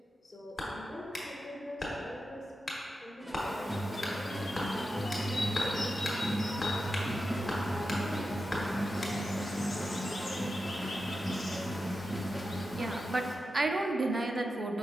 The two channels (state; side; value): normal; both; correlation 0.90